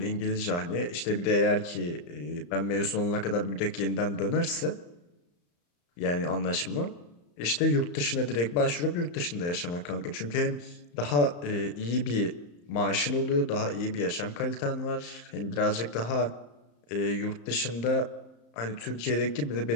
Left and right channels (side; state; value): right; late; 35 ms